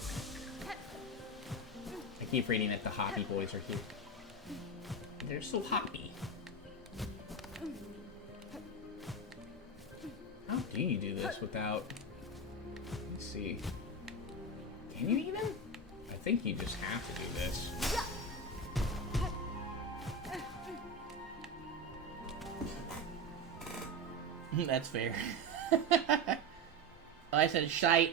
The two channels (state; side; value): normal; both; correlation 0.19